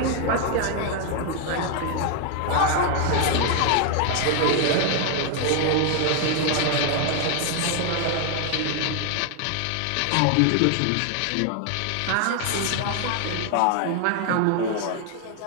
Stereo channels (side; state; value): both; different; correlation 0.00